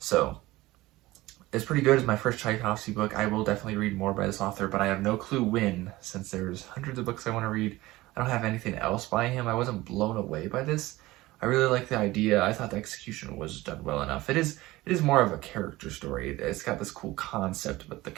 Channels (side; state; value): left; quieter; 18.7 dB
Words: it's pretty good. It's my first Tchaikovsky book. I will definitely read more by this author, but I have no clue when, since there's hundreds of books I want to read. I don't have anything else by him. I wasn't blown away by this. I really like the idea. I thought the execution was done well enough. It is more of a character story. It's got this cool concept, but the